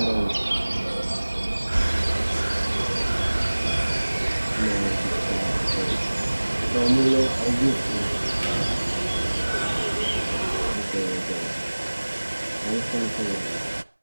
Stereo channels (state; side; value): inverted; both; correlation -1.00